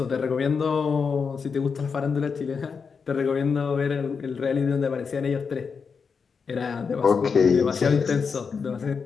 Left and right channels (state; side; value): quieter; right; 5.6 dB